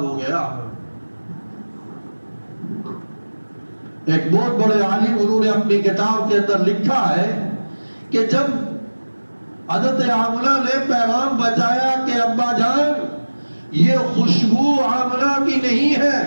ہو گیا۔ ایک بہت بڑے عالم انہوں نے اپنی کتاب کے اندر لکھا ہے کہ جب حضرت آمنہ نے پیغام بچایا کہ ابا جان یہ خوشبو آمنہ کی نہیں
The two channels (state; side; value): inverted; both; correlation -1.00